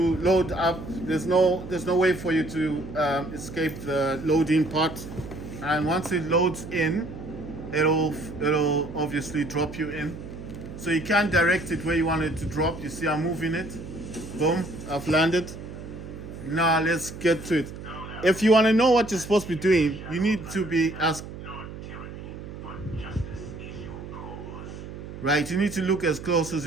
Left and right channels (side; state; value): right; noise; hum, 11 dB below the sound